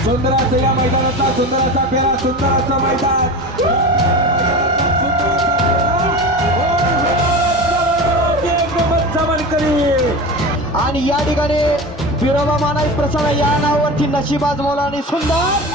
सुंदर असं या मैदानाचा सुंदर असा फेरा सुंदर असं मैदान आणि या ठिकाणी विरोबा मानाई प्रसन्न या नावावरती नशिबाज मोला आणि सुंदर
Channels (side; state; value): both; normal; correlation 0.29